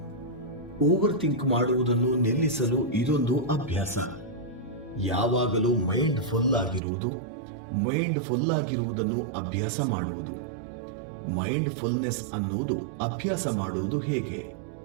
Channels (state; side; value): drops out; left; at 6.8 s